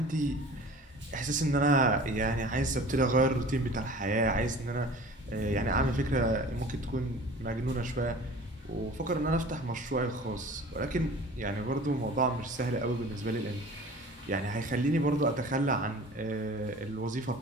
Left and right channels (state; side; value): normal; both; correlation 0.42